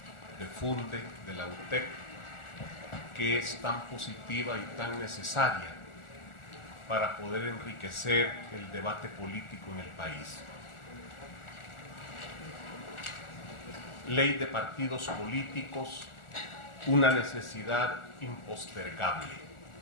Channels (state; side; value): late; right; 1.4 ms